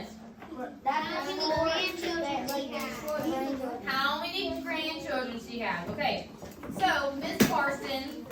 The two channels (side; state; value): both; identical; correlation 1.00